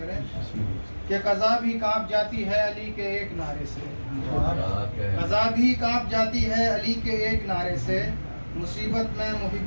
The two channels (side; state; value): both; inverted; correlation -1.00